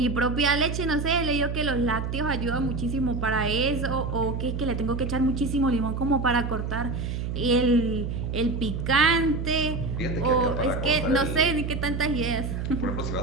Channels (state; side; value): noise; right; hum, 3 dB below the sound